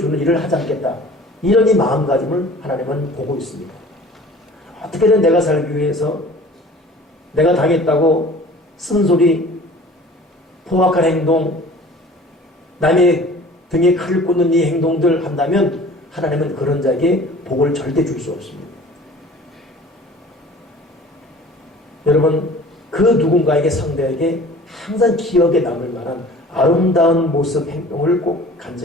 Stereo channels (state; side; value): normal; both; correlation 0.46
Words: 일을 하지 않겠다. 이런 이 마음가짐을 하나님은 보고 있습니다. 어떻게든 내가 살기 위해서 내가 당했다고 쓴소리, 포악한 행동, 남의 등에 칼을 꽂는 이 행동들 한다면 하나님은 그런 자에게 복을 절대 줄 수 없습니다. 여러분 그 누군가에게 상대에게 항상 기억에 남을 만한 아름다운 모습, 행동을 꼭